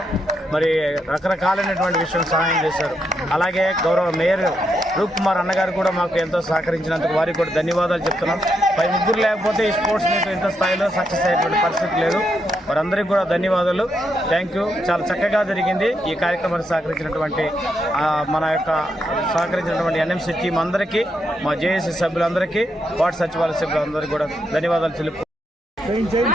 మరి రకరకాలైనటువంటి విషయం సహాయం చేశారు. అలాగే గౌరవ మేయర్ రూప్ కుమార్ అన్నగారు కూడా మాకు ఎంతో సహకరించినందుకు వారికి కూడా ధన్యవాదాలు చెప్తున్నాం. పై ముగ్గురు లేకపోతే ఈ స్పోర్ట్స్ మీట్ ఇంత స్థాయిలో సక్సెస్ అయ్యేటువంటి పరిస్థితి లేదు. వారందరికీ కూడా ధన్యవాదాలు. Thank you. చాలా చక్కగా జరిగింది. ఈ కార్యక్రమానికి సహకరించినటువంటి NMC టీం అందరికీ, మా జేఏసీ సభ్యులందరికీ, వార్డు సచివాలయ సభ్యులందరికీ కూడా ధన్యవాదాలు తెలుపు.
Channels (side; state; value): both; normal; correlation 0.80